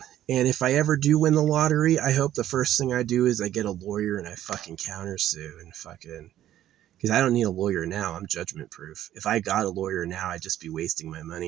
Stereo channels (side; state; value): left; quieter; 12.4 dB